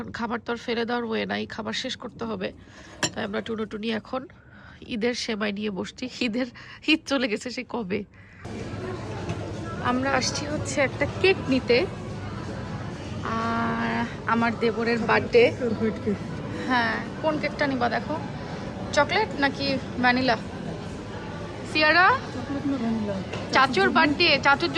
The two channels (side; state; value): both; identical; correlation 1.00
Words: খাবার তো আর ফেলে দেওয়ার ওয়ে নাই, খাবার শেষ করতে হবে। তাই আমরা টুনি এখন ঈদের সেমাই নিয়ে বসছি। ঈদ চলে গেছে সে কবে। আমরা আসছি হচ্ছে একটা কেক নিতে, আর আমার দেবরের বার্থডে। হ্যাঁ, কোন কেকটা নিবা দেখো, চকলেট নাকি ভ্যানিলা? সিয়ারা, চাচুর বার্থডে, চাচুর